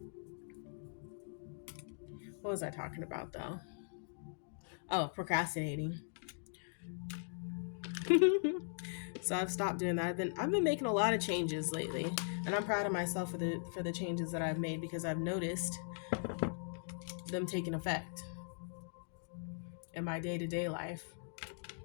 What was I talking about though? Oh, procrastinating. So I've stopped doing that. I've been making a lot of changes lately, and I'm proud of myself for the changes that I've made, because I've noticed them taking effect in my day-to-day life.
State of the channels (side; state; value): right; silent; digital silence